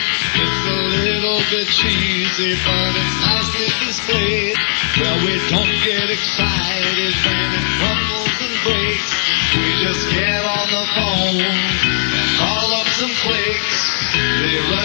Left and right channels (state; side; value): silent; right; digital silence